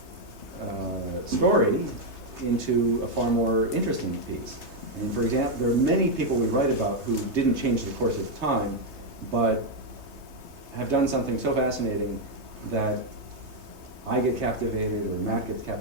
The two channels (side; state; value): left; late; 3.3 ms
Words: of story into a far more interesting piece. I mean, for example, there are many people we write about who didn't change the course of time, but have done something so fascinating that I get captivated, or Matt gets